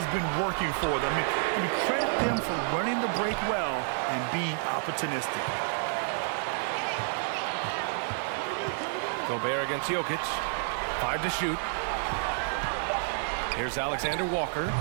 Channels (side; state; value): left; silent; digital silence